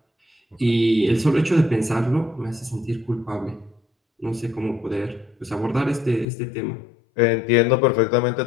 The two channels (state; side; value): drops out; right; at 6.2 s